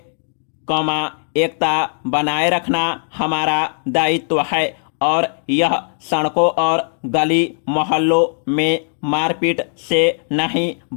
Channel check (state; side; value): silent; right; digital silence